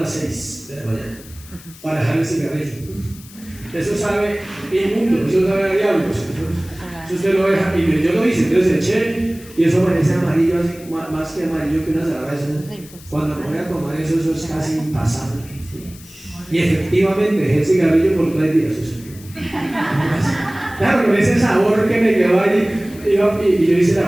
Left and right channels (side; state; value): left; noise; hiss, 20 dB below the sound